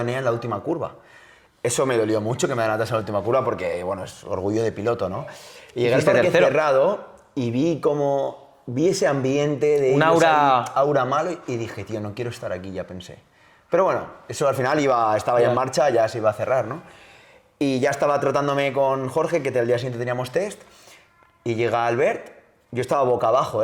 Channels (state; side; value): identical; both; correlation 1.00